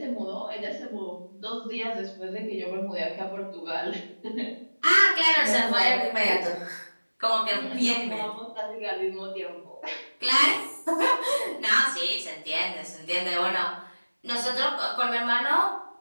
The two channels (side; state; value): both; inverted; correlation -1.00